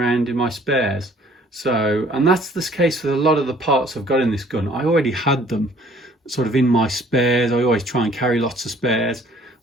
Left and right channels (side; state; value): both; normal; correlation 0.57